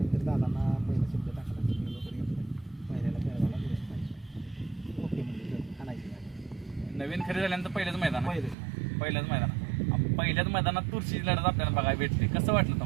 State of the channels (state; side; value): drops out; left; at 8.6 s